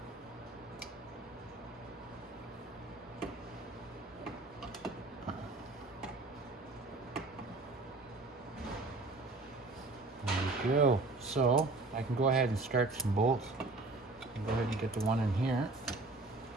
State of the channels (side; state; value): left; quieter; 3.3 dB